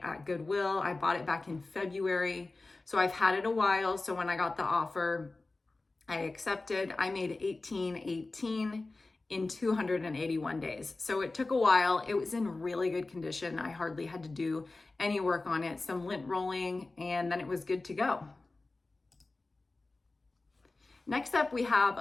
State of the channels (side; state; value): right; quieter; 3.3 dB